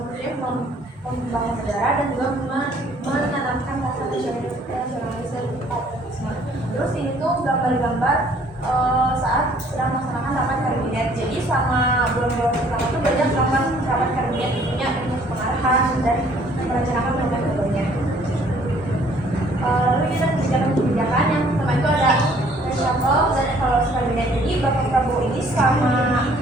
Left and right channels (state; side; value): normal; both; correlation 0.59